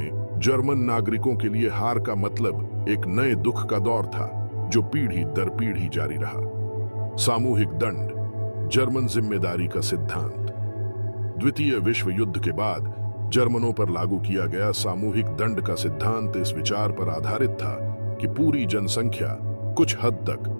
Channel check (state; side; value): inverted; both; correlation -1.00